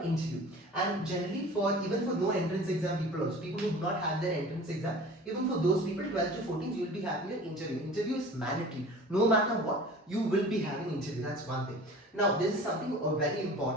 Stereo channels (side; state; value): both; normal; correlation 0.42